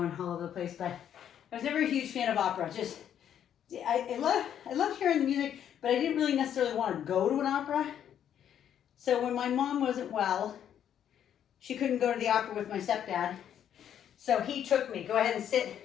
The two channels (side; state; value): right; quieter; 9.6 dB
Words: all over the place, but I was never a huge fan of opera. Just, I love hearing the music, but I didn't really necessarily want to go to an opera. So when my mom wasn't well, she couldn't go to the opera with my stepdad. So he took me. Go ahead and